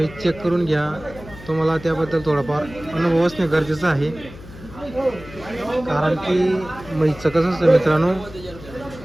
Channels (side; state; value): left; noise; hum, 17 dB below the sound